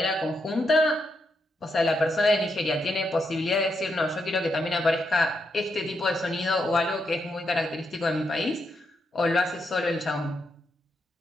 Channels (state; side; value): normal; both; correlation 0.81